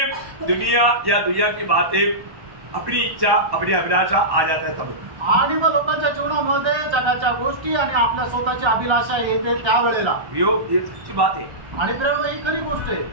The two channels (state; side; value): late; left; 1.1 ms